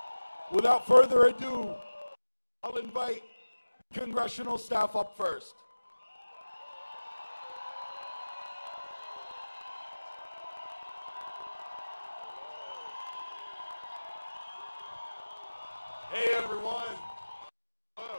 Without further ado, I'll invite congressional staff up first. Hey everyone.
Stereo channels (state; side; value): inverted; both; correlation -1.00